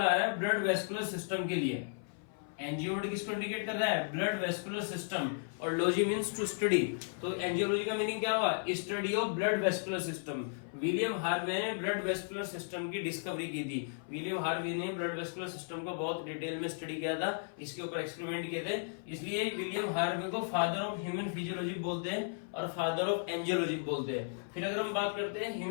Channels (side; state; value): right; silent; 55 dB below the other